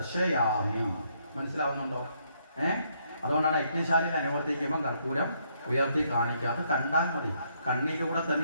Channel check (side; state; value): both; inverted; correlation -0.72